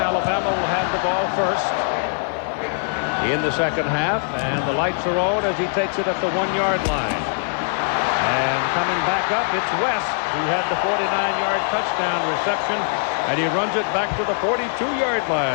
will have the ball first in the second half, and the lights are on as he takes it at the 1-yard line. And coming back up, it's West, who had the 49-yard touchdown reception, and he runs it back to the 42-yard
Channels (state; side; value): silent; right; digital silence